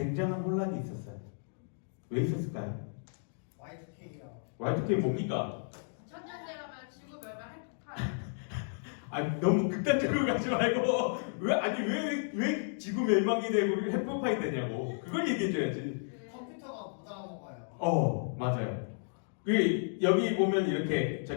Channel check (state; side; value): silent; right; digital silence